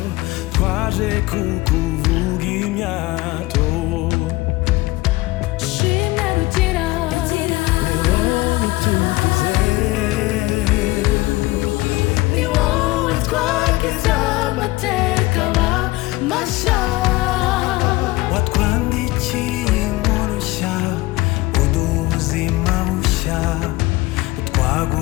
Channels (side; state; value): right; quieter; 20.4 dB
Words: twaje kukuvuga imyato shimwe rugira ni wowe tugize ni wowe twagize amateka mashya watwandikiye inkuru nshya uduha ubuzima bushya